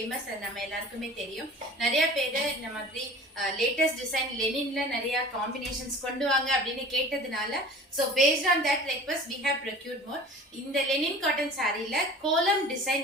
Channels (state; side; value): normal; both; correlation 0.42